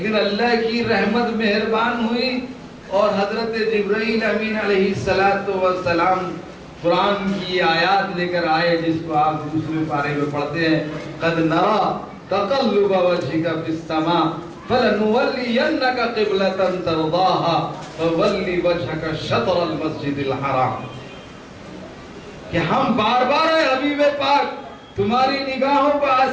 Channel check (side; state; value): both; identical; correlation 1.00